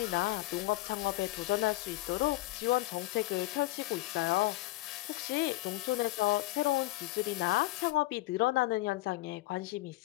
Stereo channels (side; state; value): right; quieter; 19.3 dB